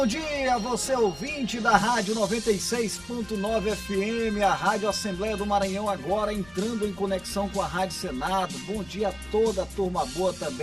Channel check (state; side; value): noise; left; rumble, 23 dB below the sound